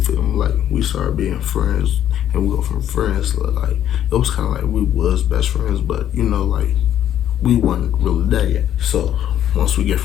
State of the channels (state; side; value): quieter; right; 10.9 dB